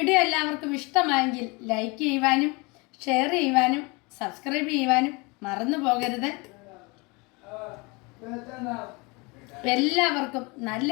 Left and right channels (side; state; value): right; quieter; 27.5 dB